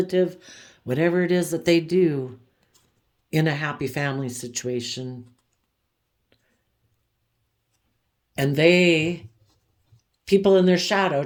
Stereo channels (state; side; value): identical; both; correlation 1.00